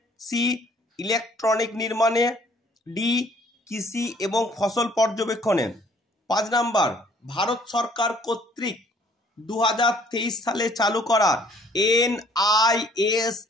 সি ইলেকট্রনিক নির্মাণে, ডি কৃষি এবং ফসল পর্যবেক্ষণে। 5 নম্বর, ভারত সরকার কর্তৃক 2023 সালে চালু করা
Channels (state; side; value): normal; both; correlation 0.59